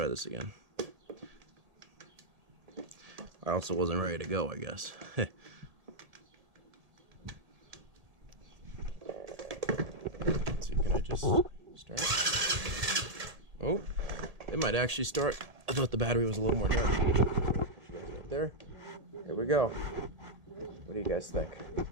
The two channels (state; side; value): late; left; 1.8 ms